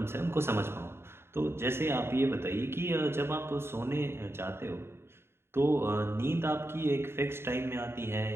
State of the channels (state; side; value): late; left; 0.12 ms